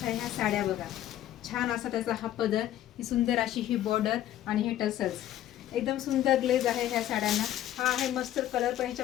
ह्या साड्या बघा. छान असा त्याचा हा पदर, ही सुंदर अशी ही बॉर्डर आणि हे टसल्स. एकदम सुंदर ग्लेज आहे ह्या साड्यांना. हा आहे मस्टर्ड कलर, पण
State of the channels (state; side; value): quieter; right; 12.5 dB